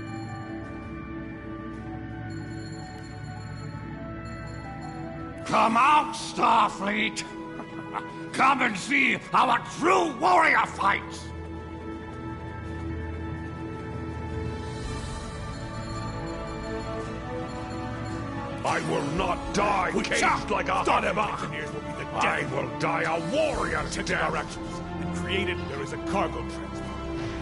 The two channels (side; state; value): both; identical; correlation 1.00